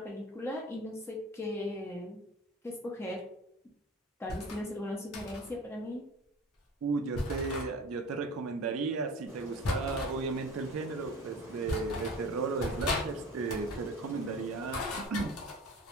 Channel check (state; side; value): normal; both; correlation 0.39